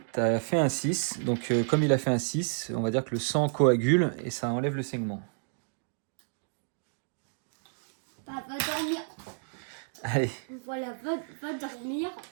tu as fait un 6. Donc, comme il a fait un 6, on va dire que le sang coagule et ça enlève le saignement. Bah, va dormir. Allez. Voilà, va dormir.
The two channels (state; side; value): silent; left; digital silence